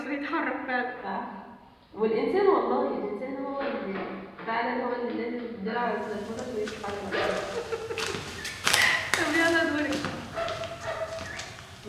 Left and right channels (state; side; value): identical; both; correlation 1.00